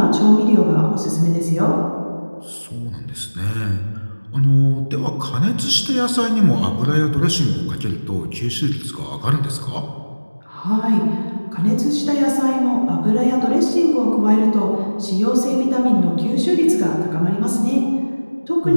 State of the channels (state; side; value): inverted; both; correlation -1.00